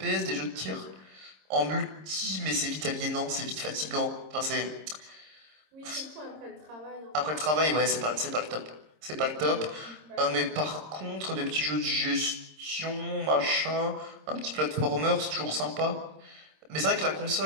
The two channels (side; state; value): left; late; 26 ms